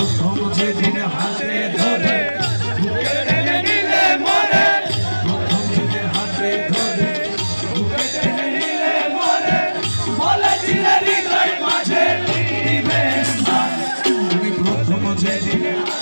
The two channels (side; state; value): both; inverted; correlation -1.00